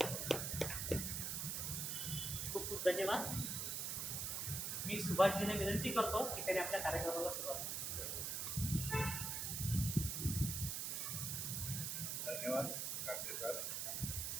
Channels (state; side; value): noise; right; hiss, 1 dB below the sound